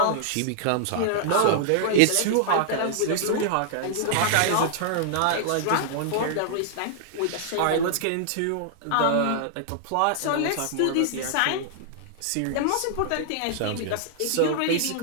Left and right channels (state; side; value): different; both; correlation -0.01